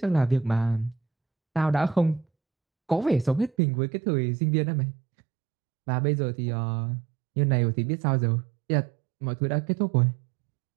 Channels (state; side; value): drops out; left; at 3.5 s